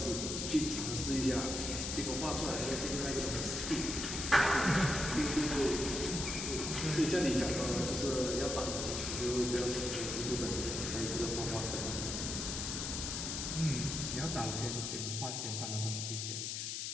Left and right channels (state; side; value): noise; left; hiss, 3 dB below the sound